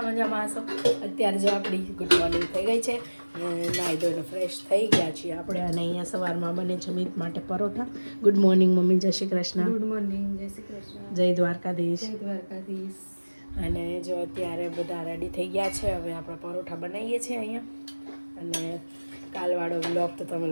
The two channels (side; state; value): both; inverted; correlation -1.00